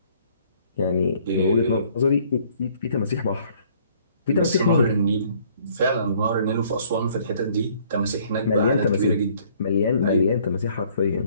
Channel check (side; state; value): both; inverted; correlation -0.60